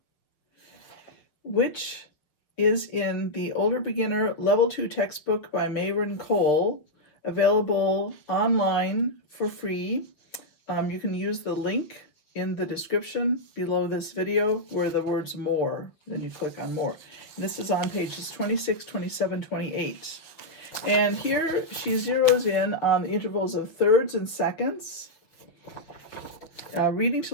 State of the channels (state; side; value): late; right; 6.3 ms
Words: which is in the Older Beginner Level 2 textbook by Mayron, available online for free. You can use the link in the description below this video where the words more, then you click on more. And this is on pages 26, 27, 28. And here she zeroes in on the intervals of thirds and seconds. Learning